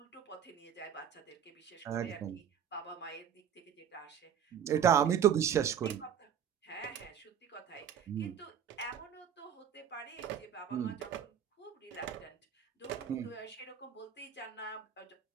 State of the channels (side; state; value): left; quieter; 8.7 dB